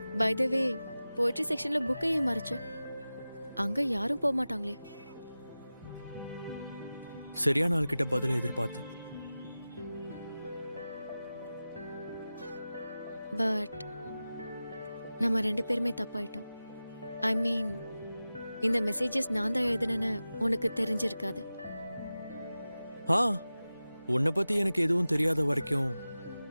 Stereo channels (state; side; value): inverted; both; correlation -0.95